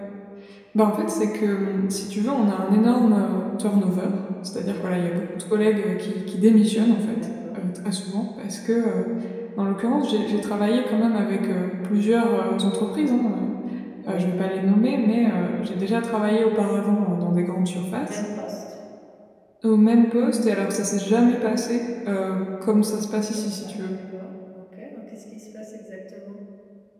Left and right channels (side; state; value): both; identical; correlation 1.00